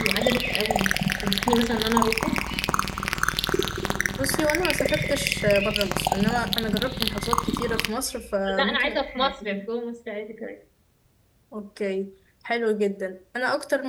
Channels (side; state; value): both; identical; correlation 1.00